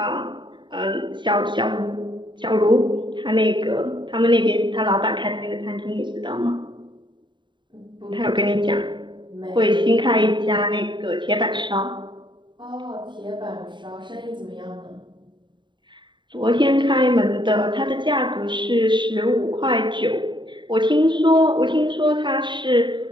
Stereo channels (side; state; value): left; late; 0.23 ms